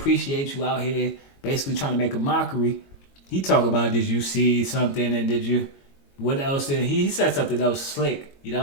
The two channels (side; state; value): right; late; 22 ms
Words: you out here basically trying to make a mockery. He talk about, did you see something, and what else did he said something else slick, you know